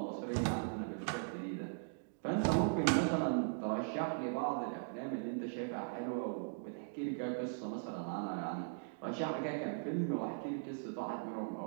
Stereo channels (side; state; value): left; silent; digital silence